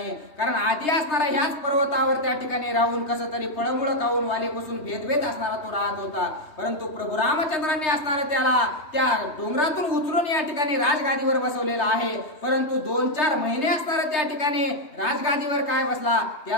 कारण आधी असणारा ह्याच पर्वतावर त्या ठिकाणी राहून कसं तरी फळमुळं खाऊन वालीपासून भेदभेद असणारा तो राहत होता. परंतु प्रभू रामचंद्रांनी असणारं त्याला त्या डोंगरातून उचलून या ठिकाणी राजगादीवर बसवलेला आहे. परंतु 2-4 महिने असणारं त्या ठिकाणी राजगादीवर काय बसला,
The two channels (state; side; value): late; right; 3.3 ms